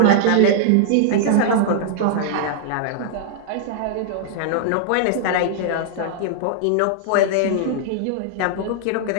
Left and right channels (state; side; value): different; both; correlation -0.01